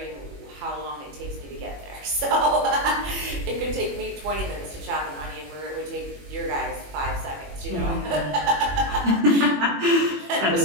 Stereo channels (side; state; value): left; late; 21 ms